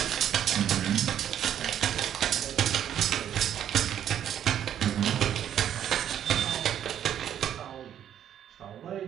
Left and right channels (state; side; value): quieter; left; 10.0 dB